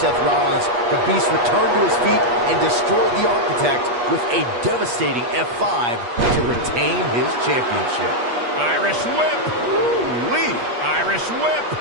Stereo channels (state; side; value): late; left; 8.3 ms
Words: Rollins, the Beast returned to his feet and destroyed the Architect with a devastating F5 to retain his championship. Irish whip! Ooh-wee! Irish whip!